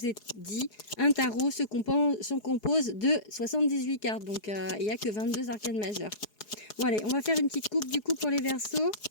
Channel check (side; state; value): right; late; 4.8 ms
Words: ai dit, un tarot se compose de 78 cartes. Donc, il n'y a que 22 arcanes majeures. Bon, allez, on va faire une petite coupe du coup pour les Verseaux.